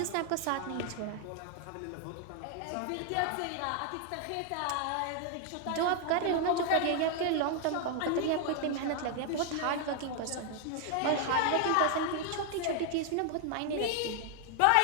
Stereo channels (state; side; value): different; both; correlation 0.00